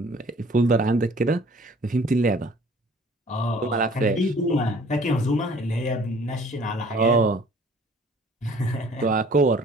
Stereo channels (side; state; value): both; normal; correlation 0.53